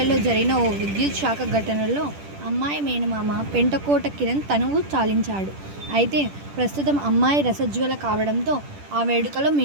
జరిగిన ఓ విద్యుత్ షాక్ ఘటనలో అమ్మాయి మేనమామ పెంటకోట కిరణ్ తనువు చాలించాడు. అయితే ప్రస్తుతం అమ్మాయి రసజ్వల కావడంతో ఆ వేడుకలో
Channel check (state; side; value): late; left; 10 ms